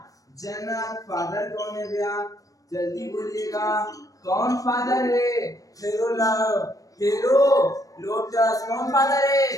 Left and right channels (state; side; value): late; right; 0.17 ms